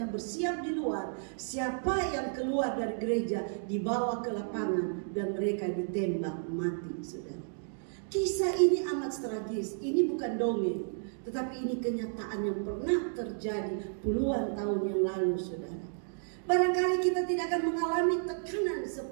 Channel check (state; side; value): silent; left; digital silence